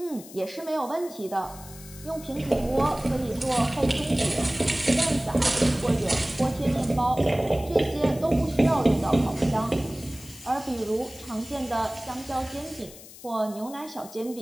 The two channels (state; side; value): noise; left; hiss, 18 dB below the sound